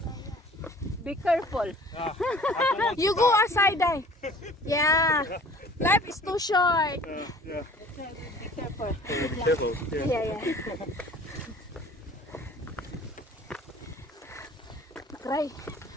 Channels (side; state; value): both; normal; correlation 0.48